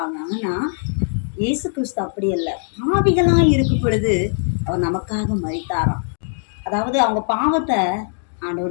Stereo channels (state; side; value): silent; right; 65 dB below the other